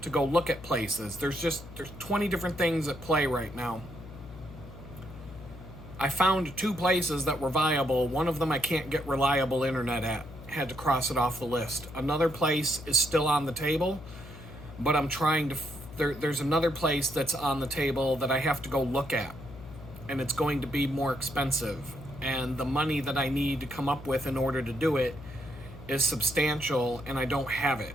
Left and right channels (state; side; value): noise; left; hum, 15 dB below the sound